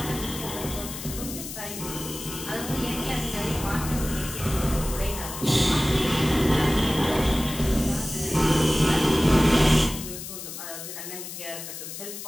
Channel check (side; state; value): left; noise; hiss, 9 dB below the sound